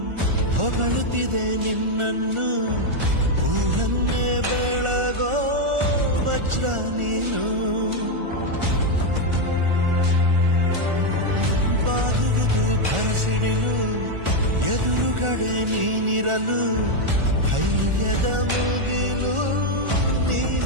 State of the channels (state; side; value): late; left; 1.4 ms